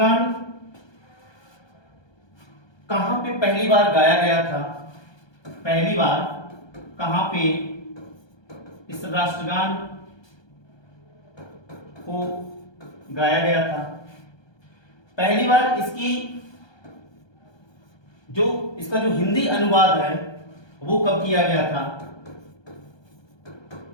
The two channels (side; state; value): right; late; 1.2 ms